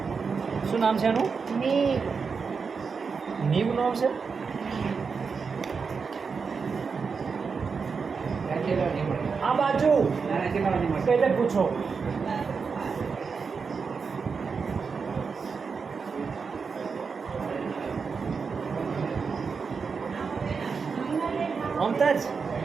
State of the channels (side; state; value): left; quieter; 5.4 dB